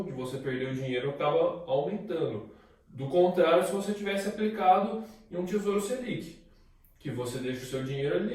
de você perder o dinheiro acaba aumentando. Do contrário, se você tivesse aplicado em um Tesouro Selic, que você deixa o seu dinheiro ali,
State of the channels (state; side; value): identical; both; correlation 1.00